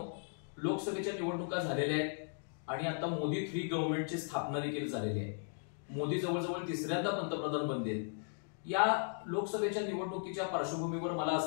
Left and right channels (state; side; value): silent; right; digital silence